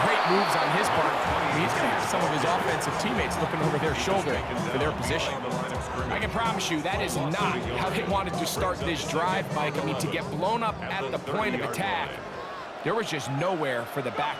great moves on his part. He's going to have some of his offensive teammates looking over their shoulder for their position. I can promise you that is not how they wanted to start this drive, Mike. I mean, to get blown up at the point of attack, there was just nowhere for the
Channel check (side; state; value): both; identical; correlation 1.00